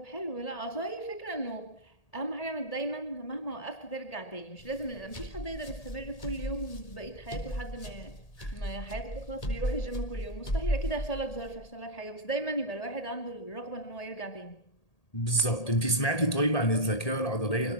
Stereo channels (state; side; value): late; right; 1.8 ms